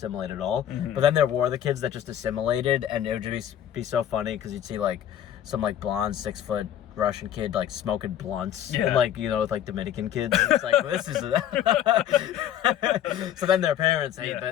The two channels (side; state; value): right; quieter; 10.7 dB